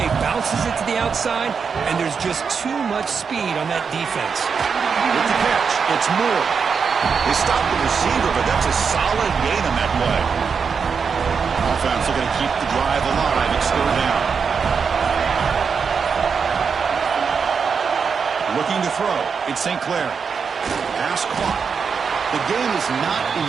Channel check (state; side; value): quieter; left; 5.9 dB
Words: bounces it to the outside, and there's just too much speed on that defense. With the catch, it's Moore. They stopped the receiver, but that's a solid gain on that play. Offense looking to keep the drive alive. It's third down. Looking to throw. It's St. Clair. Pass caught. The gain is not